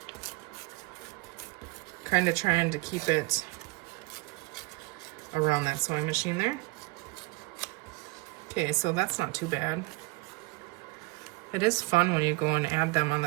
Kind of trying to keep it around that sewing machine there. Okay, so that's not too bad. It is fun when you go and add them on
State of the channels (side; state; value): left; quieter; 23.3 dB